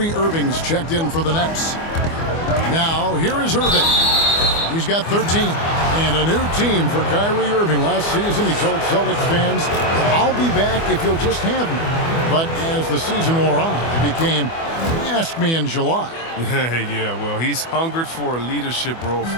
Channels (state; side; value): late; right; 24 ms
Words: Irving's checked in for the Nets. Now, here is Irving. He's got 13. And a new team for Kyrie Irving. Last season, he told Celtics fans, "I'll be back if you'll just have me." But as the season wore on, it became, "Ask me in July." Yeah, well, he's hungered for a leadership role